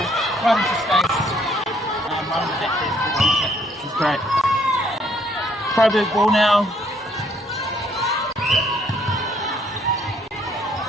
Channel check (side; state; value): both; normal; correlation 0.65